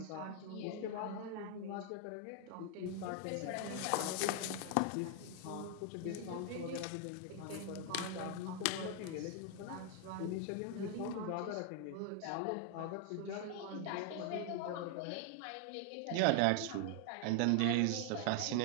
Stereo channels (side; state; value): both; different; correlation 0.00